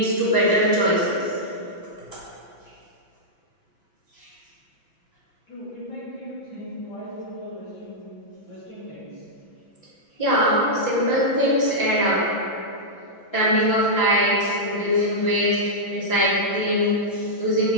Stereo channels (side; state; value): right; late; 5.9 ms